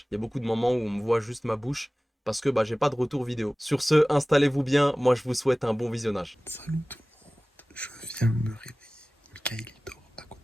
il y a beaucoup de moments où on me voit juste ma bouche. Parce que j'ai pas de retour vidéo. Sur ce, installez-vous bien. Moi, je vous souhaite un bon visionnage. Salut tout le monde, je viens de me réveiller. Mikael il dort à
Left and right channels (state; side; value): normal; both; correlation 0.98